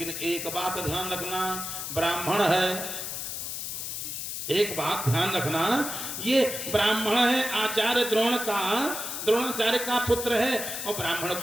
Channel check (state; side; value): noise; left; hiss, 5 dB below the sound